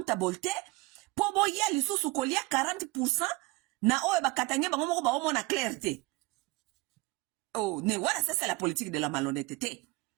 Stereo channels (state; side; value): quieter; left; 23.2 dB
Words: te po boya lisusu kolia 40% na oyo bakatange bango moko ba omona clarté. Oh, ne voilà, ça c'est la politique de la malhonnêteté.